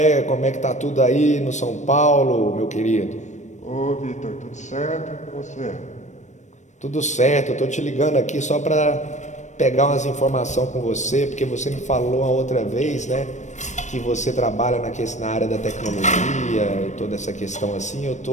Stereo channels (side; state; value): right; late; 0.34 ms